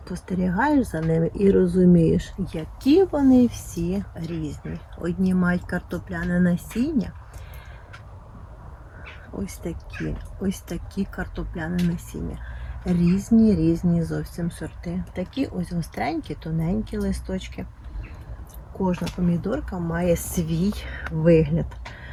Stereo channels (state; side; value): identical; both; correlation 1.00